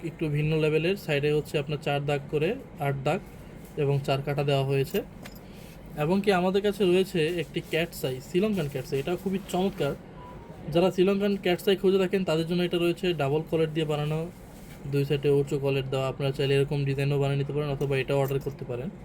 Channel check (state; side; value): identical; both; correlation 1.00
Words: একটু ভিন্ন লেভেলের। সাইডে হচ্ছে আপনার 4 দাগ করে 8 দাগ এবং 4 কাটা দেওয়া হয়েছে। এবং কি আমাদের কাছে রয়েছে একটি ক্যাটসাই, শ্রীলঙ্কান ক্যাটসাই। এটাও খুবই চমৎকার। যারা শ্রীলঙ্কান ক্যাটসাই খুঁজে থাকেন তাদের জন্য এটা রয়েছে ডাবল কলেট দিয়ে বানানো, 2 সাইডে উঁচু কলেট দেওয়া। আপনারা চাইলে এরকম ডিজাইনও বানিয়ে নিতে পারেন অথবা এটাও অর্ডার করতে পারেন।